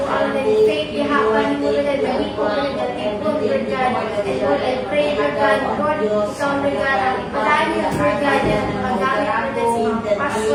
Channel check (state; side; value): identical; both; correlation 1.00